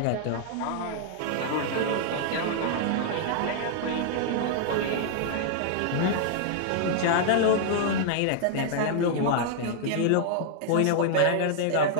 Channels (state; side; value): different; both; correlation -0.01